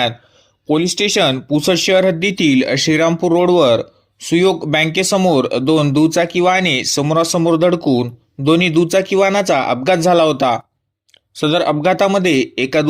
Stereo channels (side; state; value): both; identical; correlation 1.00